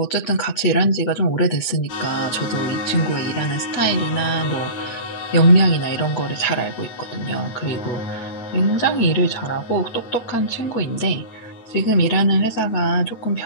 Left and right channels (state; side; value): late; right; 8.7 ms